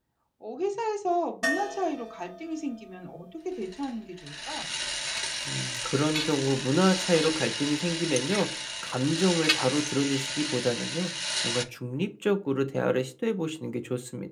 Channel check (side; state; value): both; identical; correlation 1.00